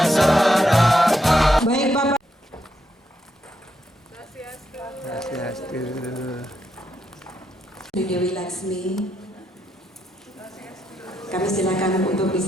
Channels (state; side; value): normal; both; correlation 0.80